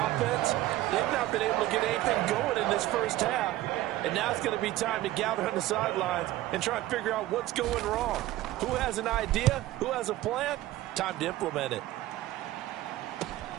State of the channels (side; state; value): left; quieter; 15.7 dB